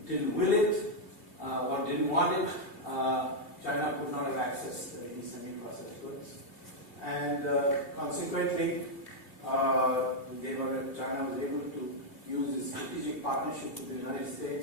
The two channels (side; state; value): right; late; 3.0 ms